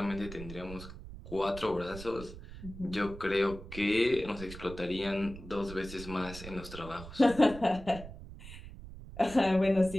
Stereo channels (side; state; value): right; noise; rumble, 13 dB below the sound